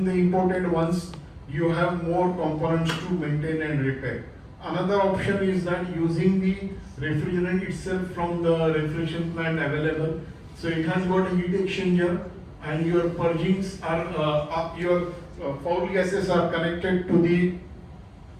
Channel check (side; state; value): both; identical; correlation 1.00